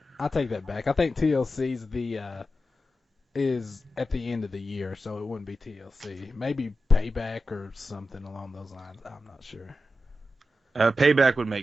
I take that back. I think TLC's is at the end of the year, so it wouldn't be TLC. Maybe Payback or something along those lines. I'm not sure. Payback would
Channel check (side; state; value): both; normal; correlation 0.91